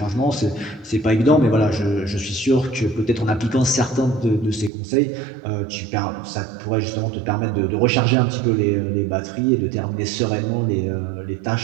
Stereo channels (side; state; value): left; drops out; at 4.7 s